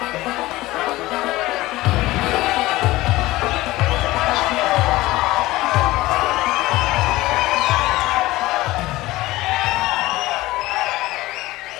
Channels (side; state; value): right; quieter; 18.3 dB